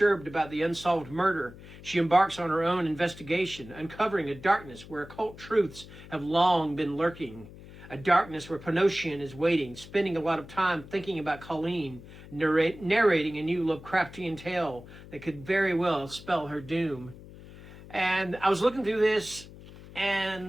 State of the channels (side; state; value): left; noise; hum, 17 dB below the sound